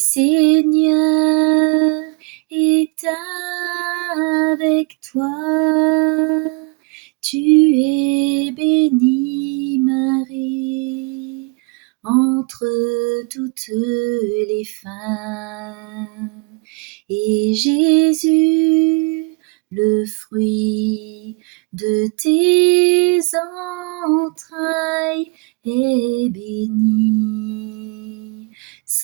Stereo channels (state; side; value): quieter; left; 31.0 dB